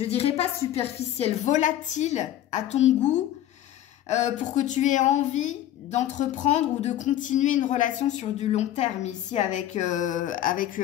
dirais pas superficiel, volatile à ton goût pour que tu aies envie d'entreprendre ou de continuer une relation sur du long terme ici avec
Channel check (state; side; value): quieter; right; 12.4 dB